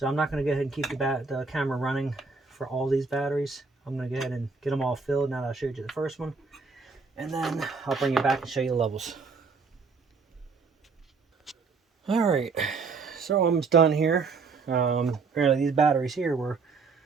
I'm not going to go ahead and keep the camera running for all these batteries. I'm going to go ahead and get them all filled now that I showed you the first one. And then I'll bring you back and show you the levels. Alright, so I'm almost done here. Apparently these batteries here were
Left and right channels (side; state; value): left; quieter; 4.6 dB